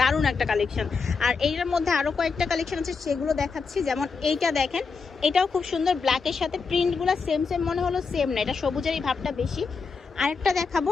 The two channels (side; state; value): right; quieter; 4.9 dB